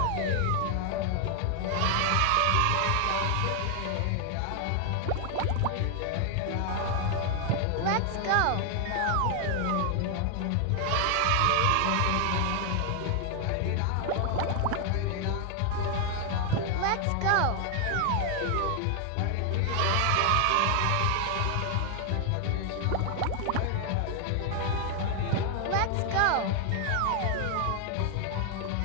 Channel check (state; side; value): different; both; correlation 0.00